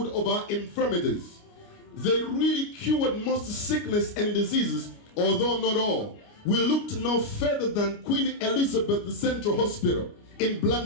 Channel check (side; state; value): right; late; 29 ms